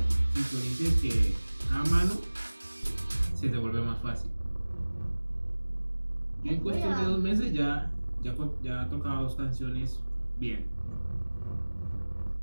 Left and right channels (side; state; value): both; inverted; correlation -1.00